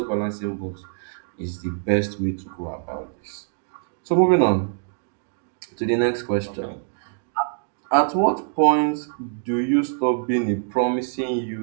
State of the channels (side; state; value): left; silent; digital silence